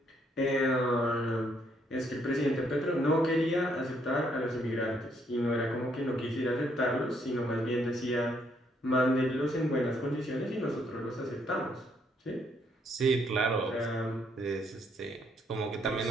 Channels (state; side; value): normal; both; correlation 0.71